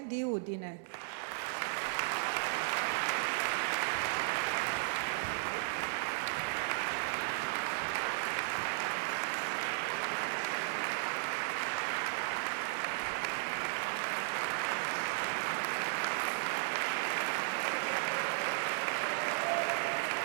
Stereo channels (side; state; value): left; silent; 54 dB below the other